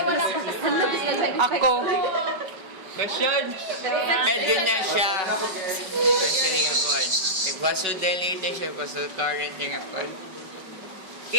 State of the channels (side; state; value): left; late; 5.4 ms